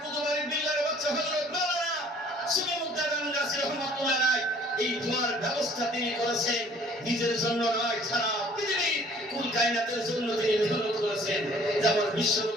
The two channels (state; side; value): normal; both; correlation 0.55